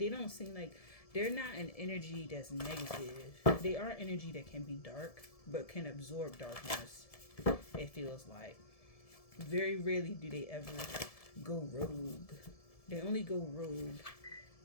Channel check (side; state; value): right; late; 1.7 ms